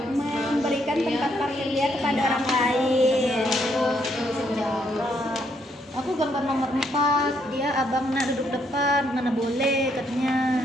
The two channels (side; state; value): both; normal; correlation 0.73